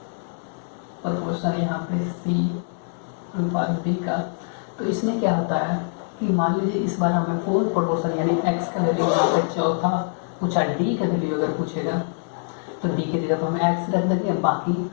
प्रोपोर्शन यहाँ पे c अनुपात b का, तो इसमें क्या होता है कि मान लीजिए इस बार हमें फोर्थ प्रोपोर्शन यानी x का वैल्यू यहाँ पे चौथा पूछा, d का वैल्यू अगर पूछेगा तो d की जगह पर हम x रख देंगे, बाकी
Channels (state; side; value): silent; right; 63 dB below the other